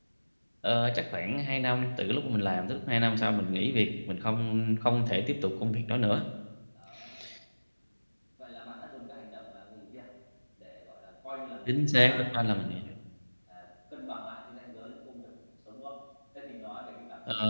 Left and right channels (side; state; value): both; inverted; correlation -1.00